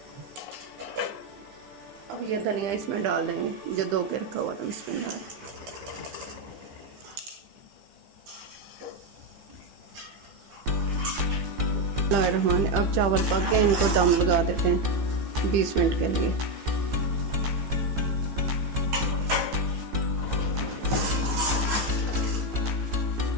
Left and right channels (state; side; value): late; left; 15 ms